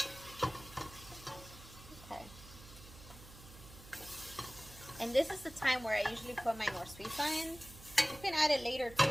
And this is the time where I usually put my norsuiza in. You can add it later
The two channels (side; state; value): right; noise; hum, 18 dB below the sound